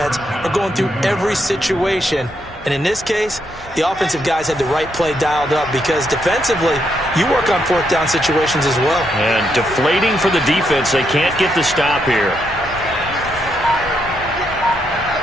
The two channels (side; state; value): both; normal; correlation 0.78